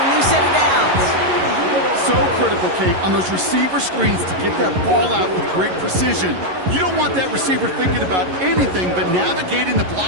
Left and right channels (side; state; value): left; late; 11 ms